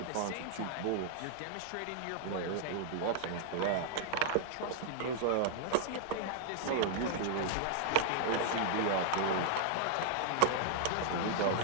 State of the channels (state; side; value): different; both; correlation 0.00